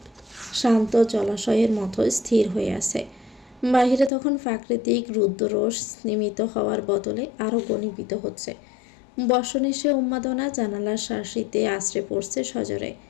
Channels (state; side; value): drops out; right; at 4.1 s